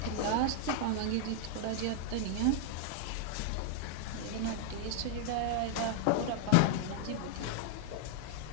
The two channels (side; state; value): both; different; correlation 0.00